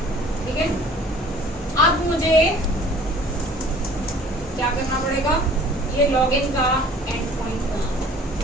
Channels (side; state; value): both; normal; correlation 0.50